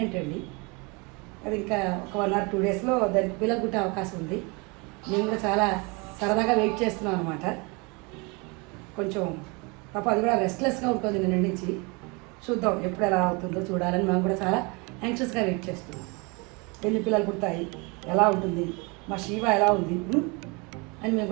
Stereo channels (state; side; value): quieter; left; 29.1 dB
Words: అండి. అది ఇంకా ఒక 1 or 2 డేస్లో దానికి పిల్లలు పుట్టే అవకాశం ఉంది. మేము కూడా చాలా సరదాగా వెయిట్ చేస్తున్నాం అనమాట. కొంచెం పాప అది కూడా రెస్ట్లెస్గా ఉంటుంది నిన్న నుంచి. చూద్దాం ఎప్పుడు ఎలా అవుతుందో చూడాలని మేము కూడా చాలా యాంగ్షియస్గా వెయిట్ చేస్తున్నాం. ఎన్ని పిల్లలు పుడతాయి, ఎలా ఉంటుంది, మా శివ ఎలా ఉంది అని మేము